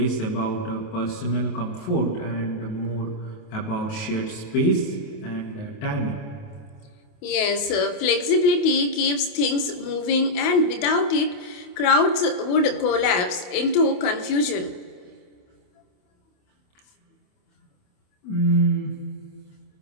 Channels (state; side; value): late; right; 28 ms